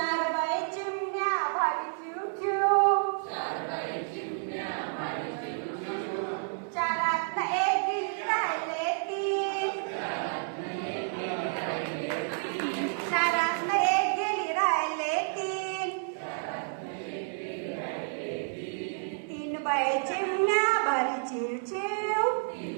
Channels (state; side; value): silent; left; digital silence